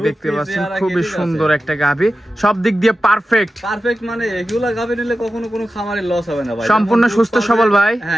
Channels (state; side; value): normal; both; correlation 0.93